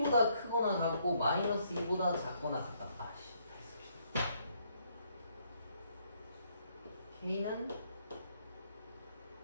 크거나 같고 마이너스 2보다 작거나 같다. 아씨. K는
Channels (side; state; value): both; inverted; correlation -0.70